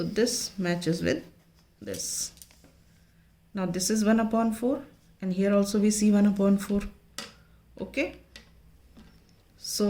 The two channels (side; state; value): both; identical; correlation 1.00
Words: this matches with this. Now this is 1 upon 4, and here also we see 1 upon 4. Okay.